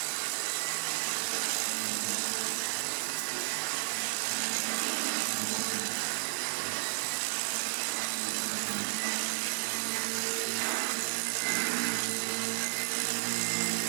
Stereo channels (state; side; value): silent; left; digital silence